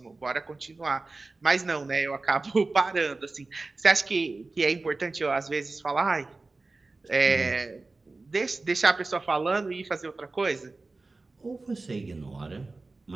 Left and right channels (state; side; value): quieter; left; 3.5 dB